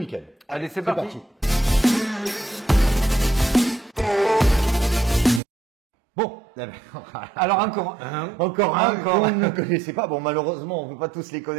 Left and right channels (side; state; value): left; drops out; at 5.4 s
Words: Allez, c'est parti. Bon, alors encore un qu'on ne connaissait pas. Bon, malheureusement, on ne peut pas tous les